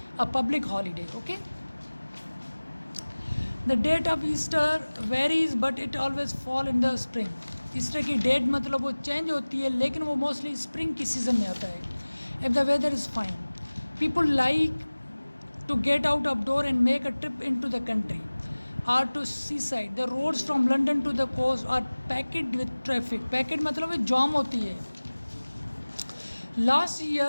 a public holiday. Okay, the date of Easter varies but it always fall in the spring. Easter की डेट मतलब वो चेंज होती है, लेकिन वो मोस्टली स्प्रिंग की सीज़न में आता है. If the weather is fine, people like to get out of door and make a trip into the country or to seaside. The roads from London to the coast are packed with traffic. Packed मतलब है जाम होती है. Last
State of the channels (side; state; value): both; inverted; correlation -1.00